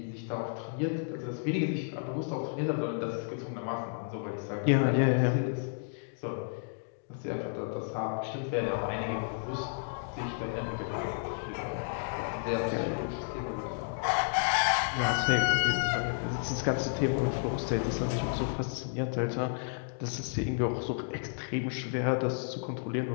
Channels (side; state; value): right; silent; digital silence